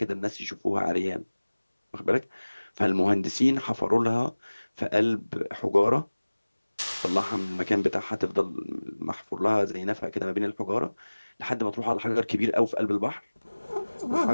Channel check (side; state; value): both; inverted; correlation -1.00